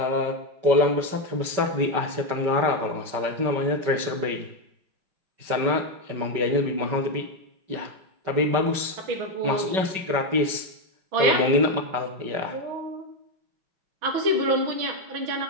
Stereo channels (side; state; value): left; late; 5.2 ms